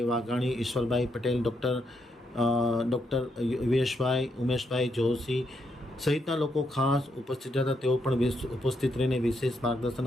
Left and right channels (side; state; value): both; normal; correlation 0.78